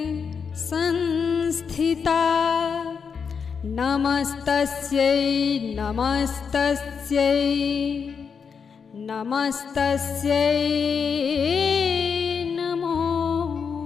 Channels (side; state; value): right; quieter; 6.2 dB